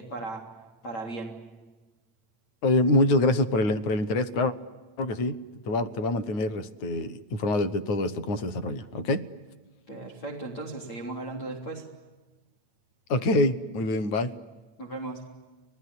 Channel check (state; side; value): late; right; 8.9 ms